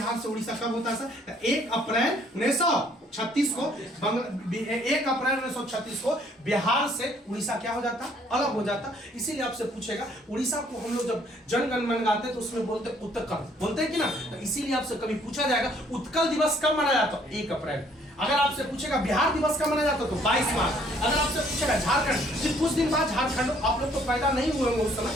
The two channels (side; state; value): both; normal; correlation 0.63